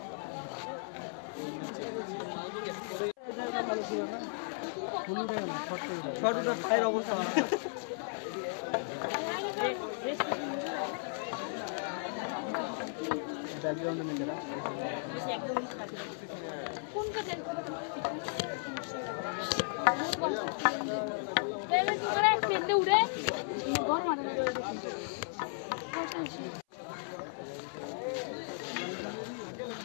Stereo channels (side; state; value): right; silent; 54 dB below the other